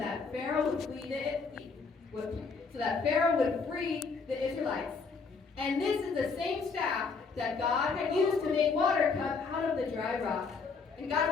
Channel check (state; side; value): quieter; right; 4.7 dB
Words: Pharaoh would free the Israelites. And this is the same staff that God had used to make water come out of the dry rock. And